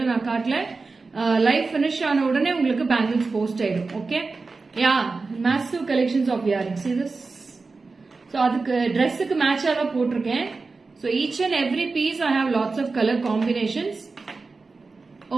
நான் காட்டல. லைவ் finish ஆன உடனே உங்களுக்கு bangles post ஆயிடும். Okay? Yeah, massive collections of earrings. See this? So அதுக்கு ட்ரெஸ்ஸுக்கு மேட்சா தான் போட்டிருக்கேன். So each and every piece I have lots of color combinations.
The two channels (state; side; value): quieter; left; 4.0 dB